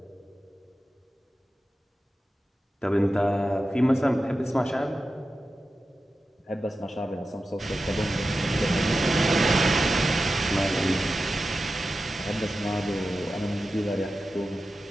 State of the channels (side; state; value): both; normal; correlation 0.92